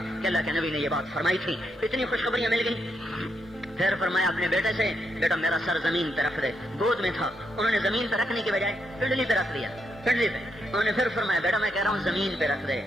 کہ اللہ کے نبی نے یہ بات فرمائی تھی۔ اتنی خوشخبریاں مل گئی۔ پھر فرمایا اپنے بیٹے سے بیٹا میرا سر زمین پہ رکھ دے، گود میں تھا، انہوں نے زمین پہ رکھنے کی بجائے پنڈلی پہ رکھ دیا، پنڈلی پہ۔ انہوں نے پھر فرمایا بیٹا میں کہہ رہا ہوں زمین پہ رکھ دے،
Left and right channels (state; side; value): normal; both; correlation 0.80